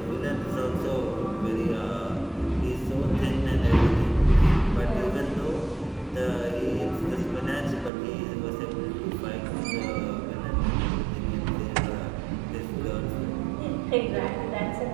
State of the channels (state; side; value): drops out; left; at 7.9 s